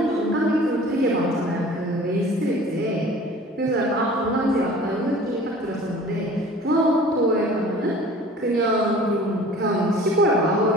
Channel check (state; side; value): normal; both; correlation 0.46